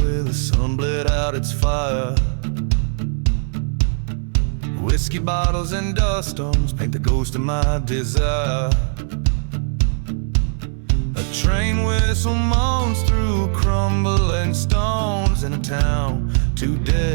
the sun bled out its fire, whiskey bottles and dust storms paint the ghost of my desire. A train whistle moans through crumbling stones in a town too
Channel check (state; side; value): silent; left; 66 dB below the other